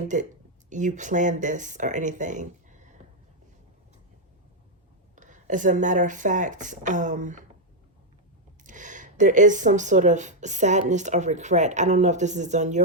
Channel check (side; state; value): both; normal; correlation -0.01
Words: that you planned this or anything. As a matter of fact, there is some sort of sadness or regret. I don't know if this is on